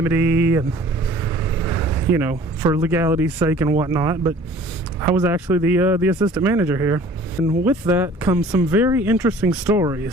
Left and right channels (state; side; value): normal; both; correlation 0.50